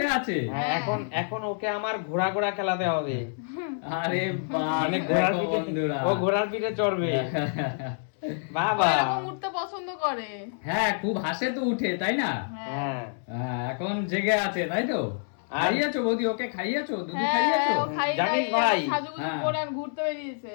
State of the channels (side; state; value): right; silent; 60 dB below the other